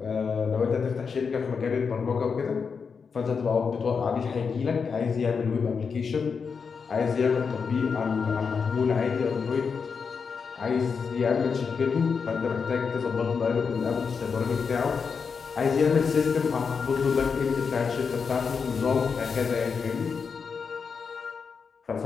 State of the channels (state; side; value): quieter; right; 5.7 dB